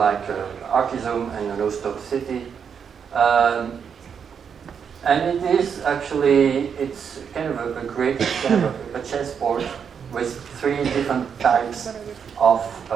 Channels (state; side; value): quieter; left; 7.1 dB